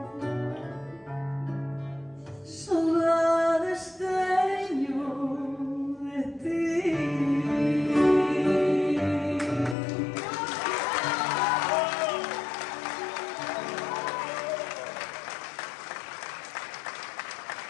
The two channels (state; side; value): drops out; right; at 9.8 s